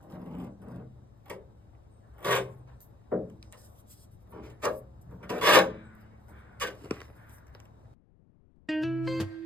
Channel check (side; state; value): left; noise; rumble, 28 dB below the sound